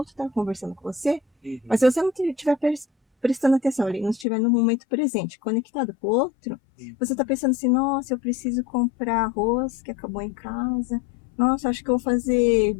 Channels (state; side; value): drops out; right; at 4.2 s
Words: está conversando com você, Uhum. mas se você não estiver prestando atenção ali, não estiver no momento presente, conectado com o outro, você está pensando assim, nossa, eu preciso comprar arroz que acabou em casa, nossa, acho que eu vou fazer